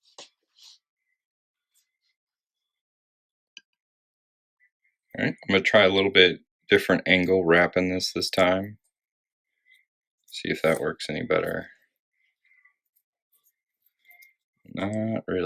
Alright, I'm going to try a little bit different angle wrapping this time. See if that works any better. Not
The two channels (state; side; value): identical; both; correlation 1.00